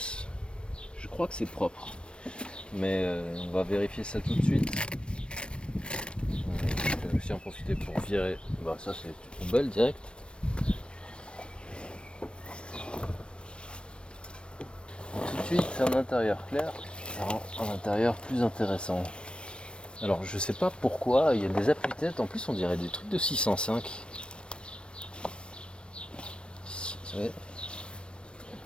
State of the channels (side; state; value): right; late; 0.057 ms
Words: Je crois que c'est propre. Mais on va vérifier ça tout de suite. Je vais aussi en profiter pour virer. Ça c'est une poubelle direct. Tout de suite un intérieur clair, ça rend un intérieur plus intéressant. Alors je sais pas pourquoi, il y a des appuis-têtes, en plus on dirait des trucs de 605.